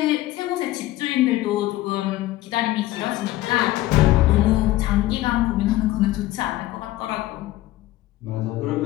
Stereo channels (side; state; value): right; quieter; 16.1 dB